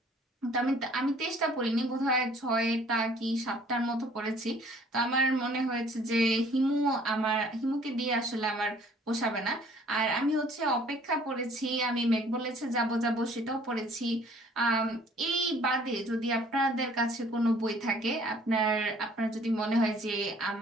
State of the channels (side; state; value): both; normal; correlation 0.56